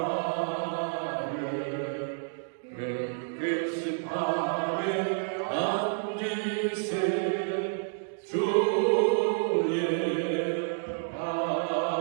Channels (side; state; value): left; silent; digital silence